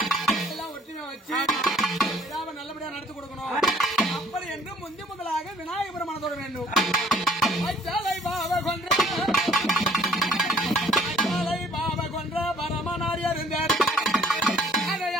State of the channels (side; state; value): both; normal; correlation 0.60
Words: எல்லாம் ஒற்றுமை வச்சு விழாவை நல்லபடியாக நடத்தி கொடுக்கணும். அப்படி என்று முந்தி முதலாக விநாயக பெருமானத்தோட வேண்டும். பாவ கொன்ற பரமனாரியார் இருந்தார்.